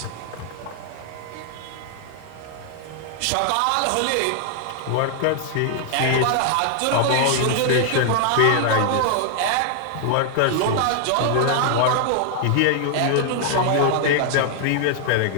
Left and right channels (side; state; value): both; different; correlation 0.00